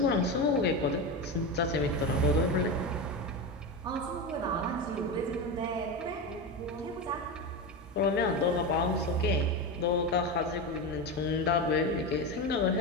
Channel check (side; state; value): both; normal; correlation 0.18